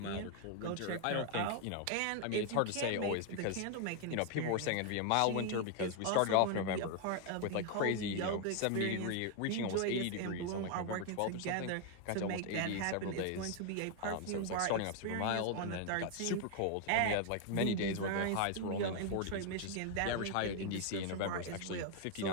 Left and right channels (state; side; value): different; both; correlation 0.00